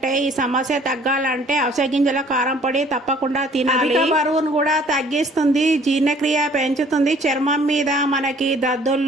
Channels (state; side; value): normal; both; correlation 0.56